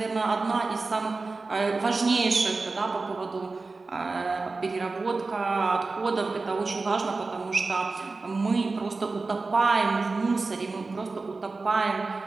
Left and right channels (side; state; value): left; quieter; 3.8 dB